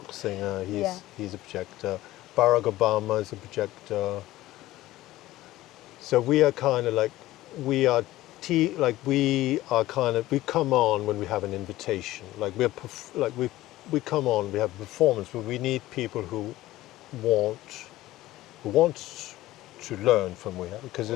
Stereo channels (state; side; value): quieter; right; 16.4 dB